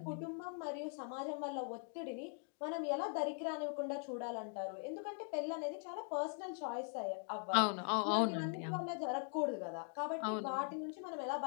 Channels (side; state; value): right; silent; 50 dB below the other